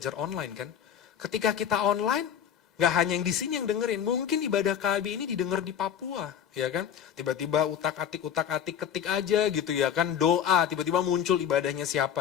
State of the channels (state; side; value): quieter; right; 8.9 dB